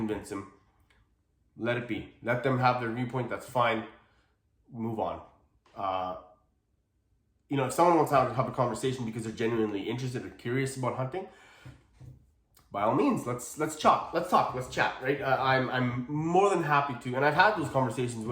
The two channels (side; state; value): both; identical; correlation 1.00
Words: them. Let it be. Let them have their viewpoint. That's fine. Move on. If someone wants to have a conversation because they're genuinely interested or curious about hunting, by all means, let's talk, let's chat, right? I'm more than happy to, and I've had those conversations,